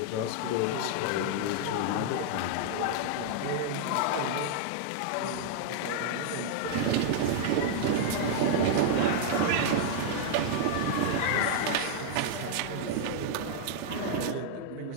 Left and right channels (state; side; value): different; both; correlation -0.01